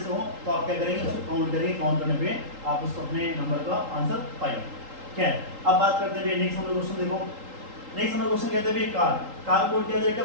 हो तो आप क्या करेंगे उसको काउंट करेंगे, काउंट करने पे आप उसको अपने नंबर का आंसर पाएंगे। क्या है, अब बात करते हैं भैया नेक्स्ट नंबर क्वेश्चन। देखो नेक्स्ट नंबर क्वेश्चन कहते हैं भैया कार कोड क्या दे रखा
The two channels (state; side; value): late; left; 3.8 ms